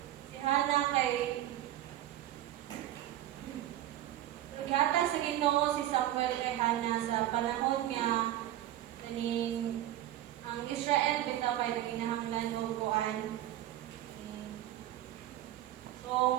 si Hana kay gata sa Ginoo si Samuel kay Hana sa panahon nga kaning ang Israel bitaw kay ginahanglan o kuan.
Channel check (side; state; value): left; quieter; 13.3 dB